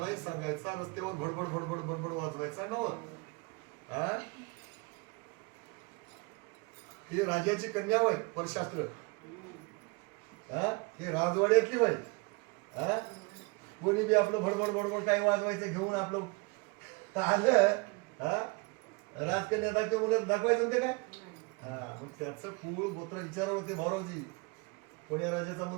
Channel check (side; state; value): left; quieter; 28.5 dB